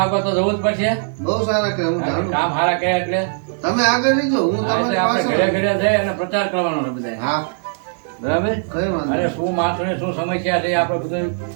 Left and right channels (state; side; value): silent; left; digital silence